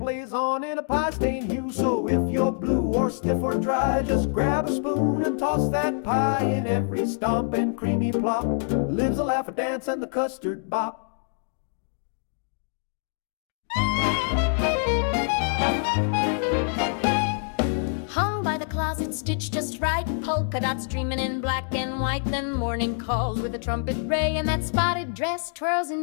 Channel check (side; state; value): right; silent; 59 dB below the other